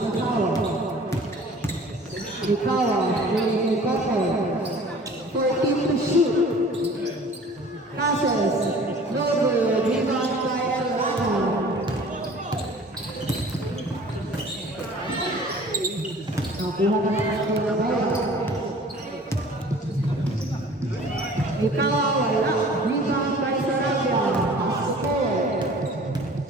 Mikawa. Mikawa, bringing Koko. 14 to shoot. Passes. No good. Rebound by Elana. Nakuha na natin ang bola. Mikawa, wala. Rebound by Sarabia. Pass to Cole.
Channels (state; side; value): normal; both; correlation 0.47